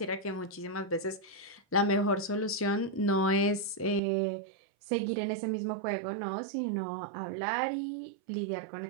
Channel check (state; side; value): drops out; left; at 4.0 s